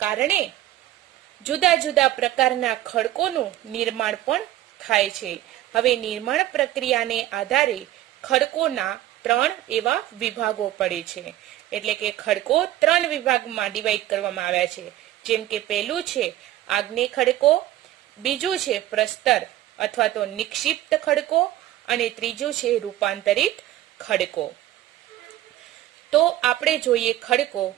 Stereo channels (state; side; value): quieter; left; 14.3 dB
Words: કારણે જુદા જુદા પ્રકારના ખડકોનું નિર્માણ પણ થાય છે. હવે નિર્માણ પ્રક્રિયાને આધારે ખડકોના 3 એવા વિભાગો પડે છે. એટલે કે ખડકો 3 વિભાગમાં ડિવાઈડ કરવામાં આવ્યા છે. જેમ કે પહેલું છે આગ્નેય ખડકો, બીજું છે પ્રસ્તર અથવા તો નિક્ષિપ્ત ખડકો, અને ત્રીજું છે રૂપાંતરિત ખડકો. તો આપણે જોઈએ ખડકો.